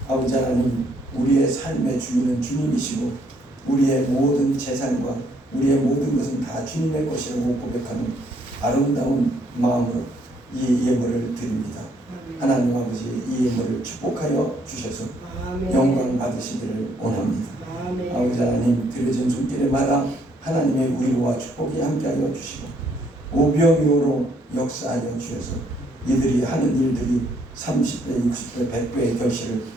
아버지 하나님, 우리의 삶의 주인은 주님이시고 우리의 모든 재산과 우리의 모든 것은 다 주님의 것이라고 고백하는 아름다운 마음으로 이 예물을 드립니다. 하나님 아버지, 이 예물을 축복하여 주셔서 영광 받으시기를 원합니다. 아버지 하나님, 드려진 손길에마다 하나님의 위로와 축복이 함께하여 주시고 오병이어로 역사하여 주셔서 이들이 하는 일들이 30배, 60배, 100배의 결실을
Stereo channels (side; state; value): both; normal; correlation 0.69